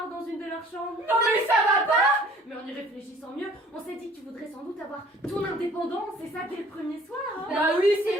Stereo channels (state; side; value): normal; both; correlation 0.53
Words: dans une de leurs chambres. Non mais ça va pas. Mais en y réfléchissant mieux, on s'est dit que tu voudrais sans doute avoir ton indépendance, c'est ça dès le premier soir hein. Bah oui,